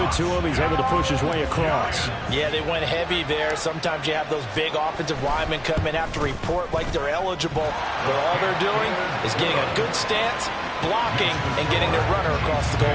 to him. He's able to push his way across. Yeah, they went heavy there. Sometimes you have those big offensive linemen come in, have to report like they're eligible. But all they're doing is getting a good stance, blocking, and getting their runner across the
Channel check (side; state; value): both; identical; correlation 1.00